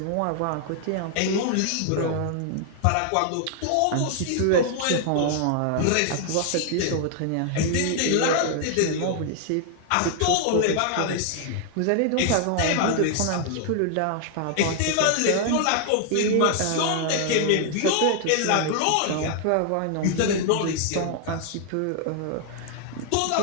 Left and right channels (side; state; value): both; different; correlation 0.00